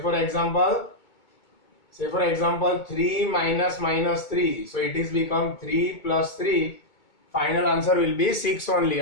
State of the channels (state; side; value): late; right; 2.2 ms